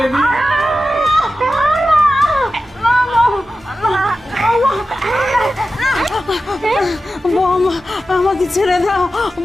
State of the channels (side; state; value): both; normal; correlation 0.93